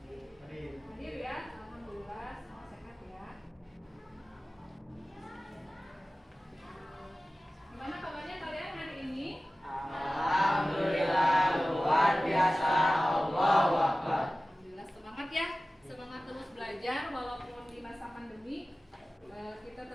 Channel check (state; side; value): normal; both; correlation 0.97